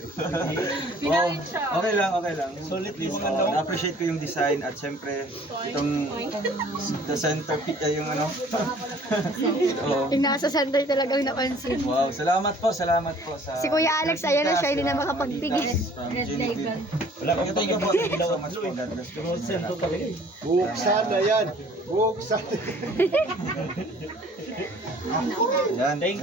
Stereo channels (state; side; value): normal; both; correlation 0.54